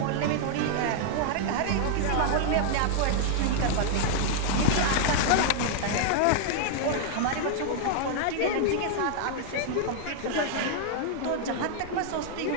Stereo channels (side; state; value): both; different; correlation -0.01